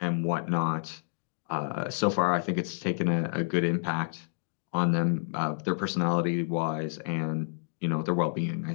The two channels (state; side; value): silent; right; digital silence